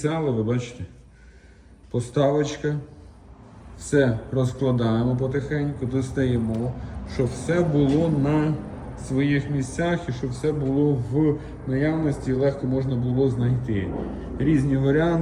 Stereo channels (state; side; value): identical; both; correlation 1.00